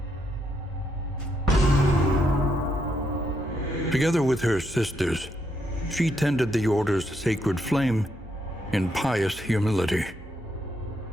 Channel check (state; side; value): normal; both; correlation 0.78